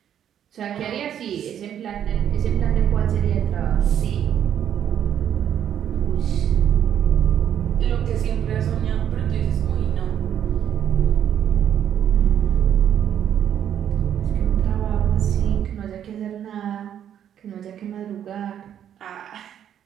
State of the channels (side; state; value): left; quieter; 9.7 dB